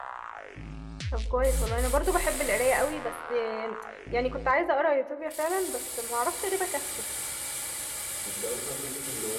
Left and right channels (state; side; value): identical; both; correlation 1.00